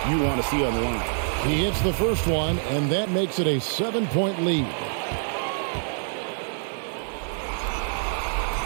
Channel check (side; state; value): left; silent; digital silence